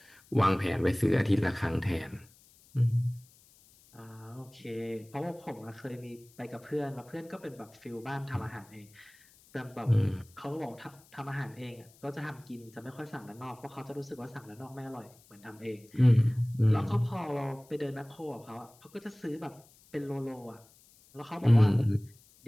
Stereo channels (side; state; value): left; noise; hiss, 27 dB below the sound